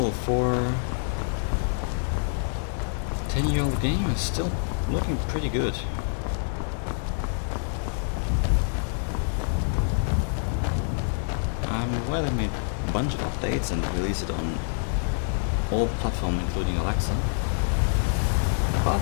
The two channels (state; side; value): silent; right; digital silence